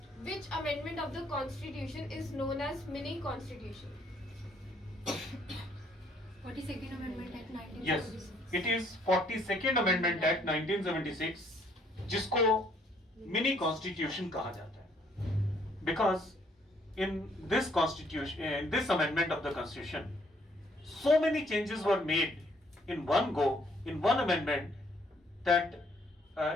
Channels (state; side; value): normal; both; correlation 0.66